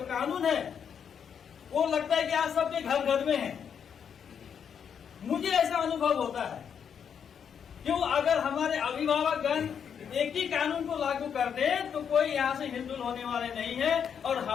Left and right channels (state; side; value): quieter; right; 7.6 dB